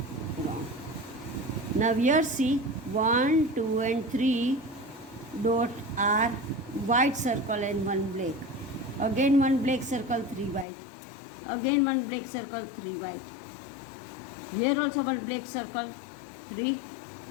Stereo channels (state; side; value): drops out; right; at 10.7 s